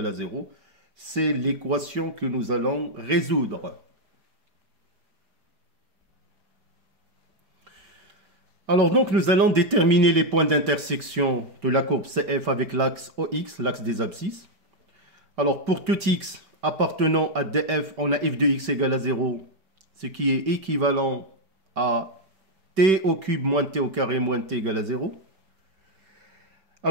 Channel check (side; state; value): left; late; 5.2 ms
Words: à 0. C'est l'équation que nous allons résoudre. Alors donc nous allons déterminer les points d'intersection de la courbe CF avec l'axe OX, l'axe des abscisses. Alors pour tout x appartenant à df, on a f de x égale à 0, ce qui est équivalent à t au cube moins t au carré moins t égale à 0.